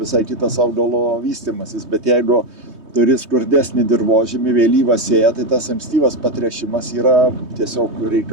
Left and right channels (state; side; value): late; left; 3.2 ms